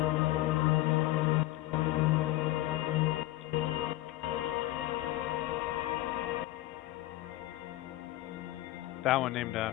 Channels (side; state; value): right; quieter; 16.5 dB